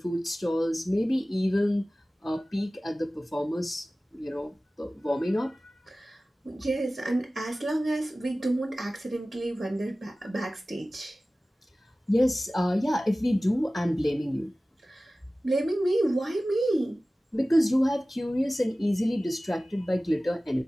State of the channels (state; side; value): normal; both; correlation 0.97